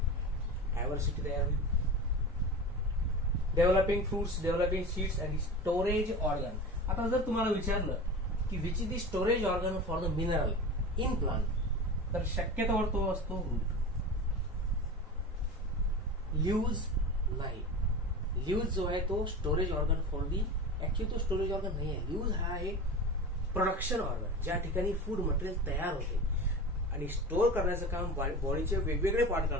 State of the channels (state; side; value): normal; both; correlation 0.30